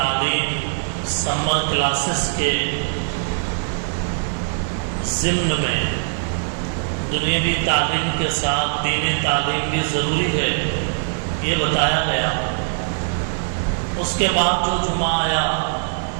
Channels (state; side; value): silent; left; 65 dB below the other